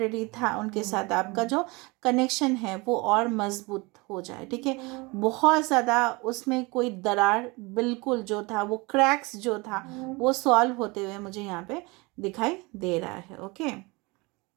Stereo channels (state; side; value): quieter; left; 25.6 dB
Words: था उनके साथ आपका जो कनेक्शन है वो और मजबूत हो जाए। ठीक है, बहुत ज़्यादा उसमें कोई दरार बिल्कुल जो था वो क्रैक्स जो था वो सॉल्व होते हुए मुझे यहाँ पे दिखाई दे रहा है। ओके,